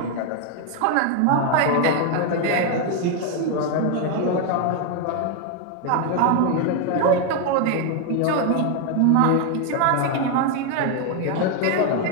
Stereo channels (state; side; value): different; both; correlation 0.01